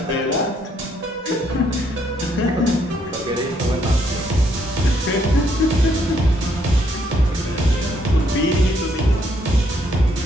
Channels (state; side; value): normal; both; correlation 0.71